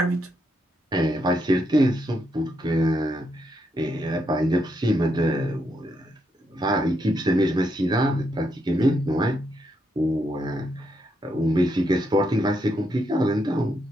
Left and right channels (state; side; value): normal; both; correlation 0.79